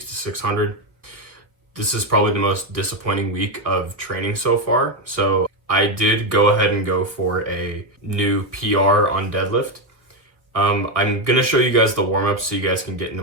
to 600. This is probably the most disappointing week of training so far. So I did go ahead and go for a new PR on deadlift. I'm gonna show you guys the warm-up so you guys can get into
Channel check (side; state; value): left; late; 1.5 ms